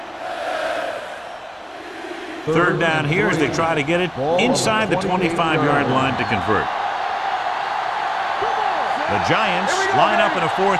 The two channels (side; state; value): both; identical; correlation 1.00